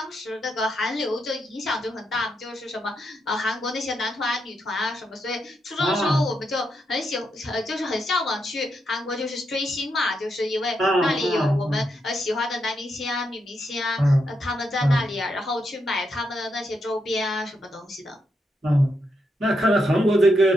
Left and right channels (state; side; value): normal; both; correlation 0.82